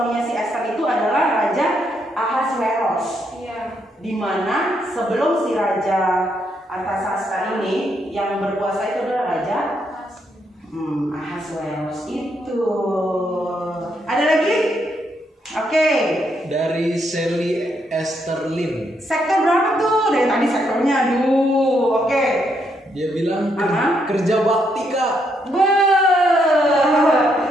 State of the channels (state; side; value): normal; both; correlation 0.76